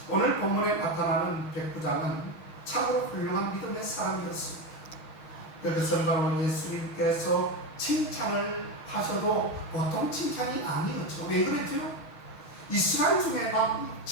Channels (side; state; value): right; late; 6.1 ms